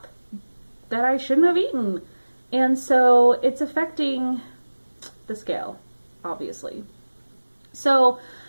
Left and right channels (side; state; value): both; inverted; correlation -1.00